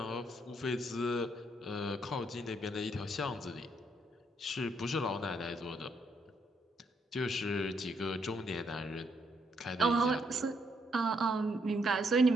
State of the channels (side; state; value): both; normal; correlation 0.73